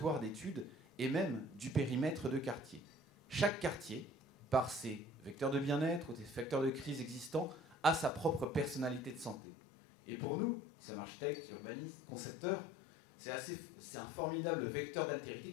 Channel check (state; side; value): drops out; right; at 9.3 s